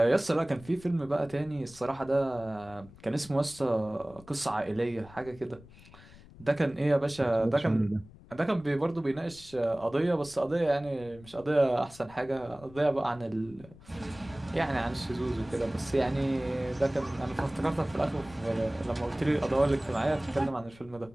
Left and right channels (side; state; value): left; noise; rumble, 21 dB below the sound